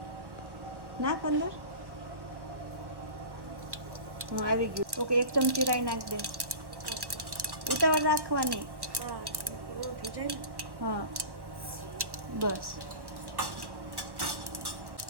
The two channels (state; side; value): late; left; 1.1 ms